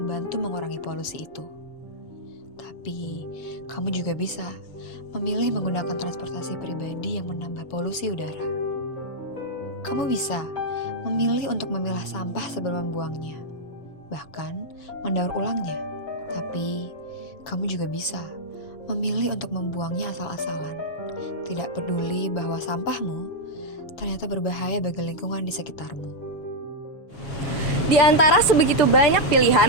membantu mengurangi polusi itu. Tapi, kamu juga bisa memilih menggunakan transportasi pribadi yang menambah polusi udara. Kamu bisa memilih untuk memilah sampah sebelum membuangnya, bahkan mendaur ulangnya. Tapi, kamu juga bisa memilih untuk membuangnya asal-asalan, tidak peduli bahwa sampahmu ternyata berbahaya bagi lingkungan di sekitarmu. Di antara sebegitu banyak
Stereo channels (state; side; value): late; right; 6.9 ms